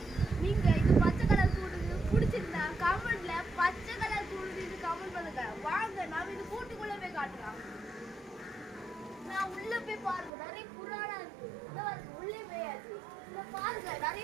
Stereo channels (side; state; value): left; drops out; at 10.3 s